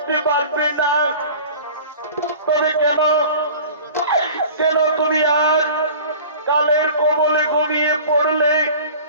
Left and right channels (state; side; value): inverted; both; correlation -0.41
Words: পারবে না। তবে কেন কেন তুমি আজ কালের কবলে ঘুমিয়ে পড়লে?